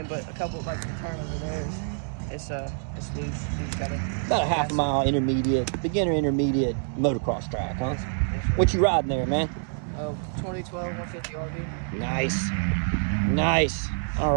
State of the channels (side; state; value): left; silent; 60 dB below the other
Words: but a couple, like the turn over there, it's loose. So you just gotta about a half a mile beginner intermediate motocross track, huh? Yes. What you riding there, man? 2012 150 RV. Nice. All